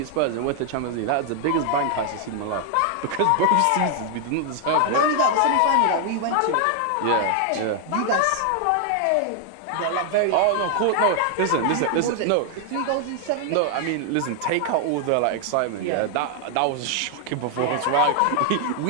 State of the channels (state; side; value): different; both; correlation 0.00